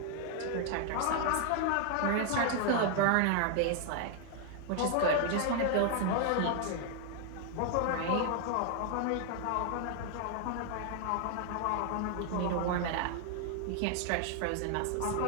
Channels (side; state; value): both; different; correlation 0.00